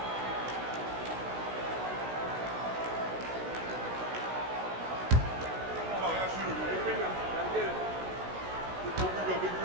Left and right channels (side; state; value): left; late; 16 ms